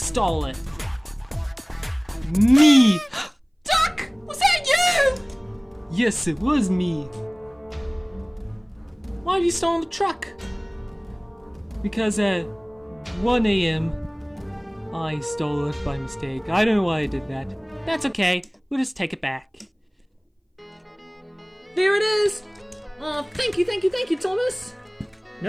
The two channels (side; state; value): both; identical; correlation 1.00